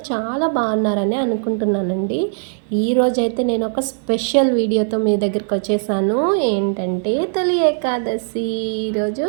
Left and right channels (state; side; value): silent; left; digital silence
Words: చాలా బాగున్నారని అనుకుంటున్నానండి. ఈరోజైతే నేను ఒక స్పెషల్ వీడియోతో మీ దగ్గరికి వచ్చేసాను. ఏంటంటే తొలి ఏకాదశి. ఈరోజు